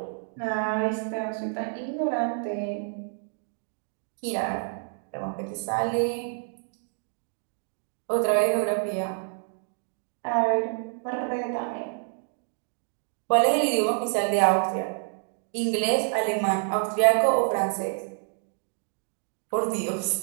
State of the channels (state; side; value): silent; left; 59 dB below the other